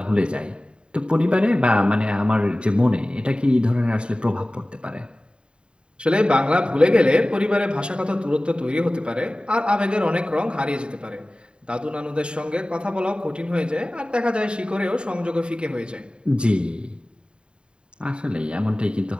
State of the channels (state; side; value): late; left; 0.052 ms